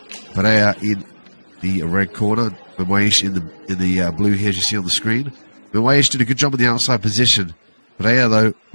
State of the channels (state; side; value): inverted; both; correlation -1.00